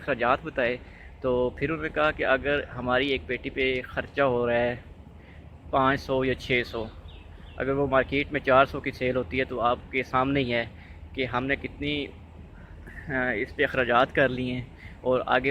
बताए तो फिर उन्होंने कहा कि अगर हमारी एक पेटी पे ख़र्चा हो रहा है 500 या 600, अगर वो मार्केट में 400 की सेल होती है तो आपके सामने ही है कि हमने कितनी इस पे अखराजात कर लिए हैं और आगे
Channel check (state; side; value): identical; both; correlation 1.00